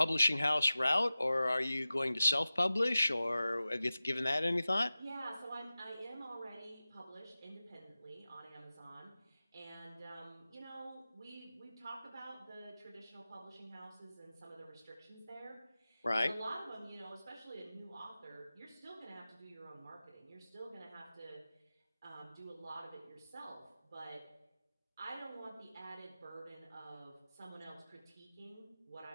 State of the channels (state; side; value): inverted; both; correlation -0.96